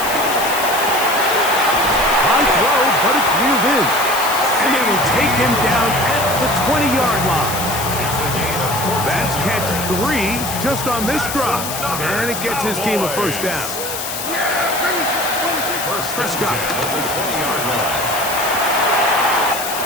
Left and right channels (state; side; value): noise; left; hiss, 6 dB below the sound